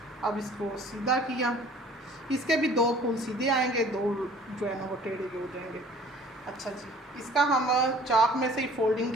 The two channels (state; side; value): normal; both; correlation 0.51